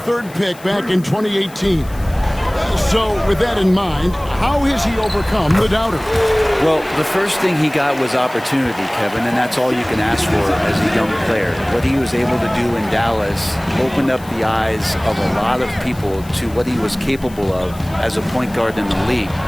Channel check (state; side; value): noise; left; hiss, 22 dB below the sound